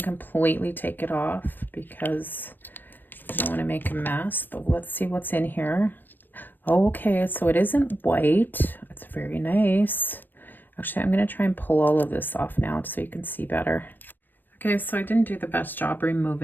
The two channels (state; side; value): late; right; 0.092 ms